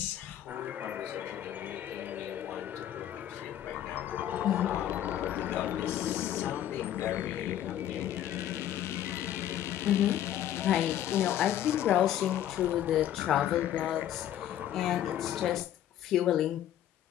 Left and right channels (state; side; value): quieter; right; 11.5 dB